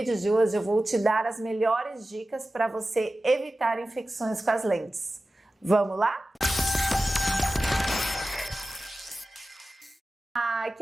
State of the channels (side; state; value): both; normal; correlation 0.95